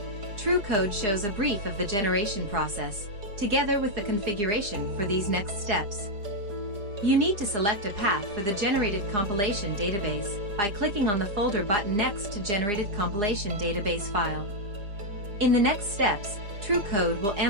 TrueCode shows a brief of the generation process, together with the configuration for these next steps. You need to select a path for the generated compilation database by clicking on the folder button next to Generated Compilation Database file. In the next steps, TrueCode will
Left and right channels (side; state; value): left; late; 4.9 ms